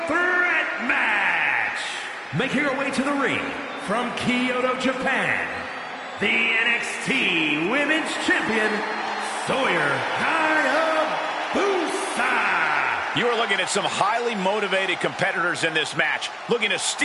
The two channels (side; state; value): both; identical; correlation 1.00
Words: threat match. Making her way to the ring from Kyoto, Japan, the NXT Women's Champion, Sawyer Hayabusa. You are looking at some highly motivated competitors in this match, looking to